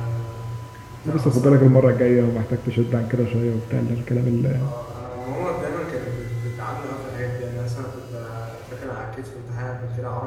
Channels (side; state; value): both; identical; correlation 1.00